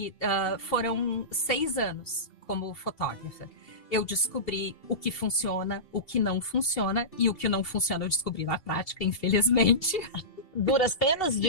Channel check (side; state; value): right; late; 2.7 ms